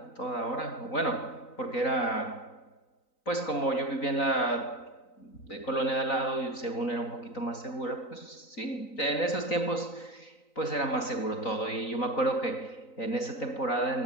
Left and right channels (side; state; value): right; late; 3.9 ms